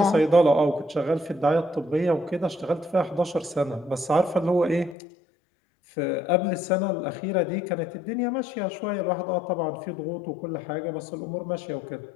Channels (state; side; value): drops out; right; at 5.0 s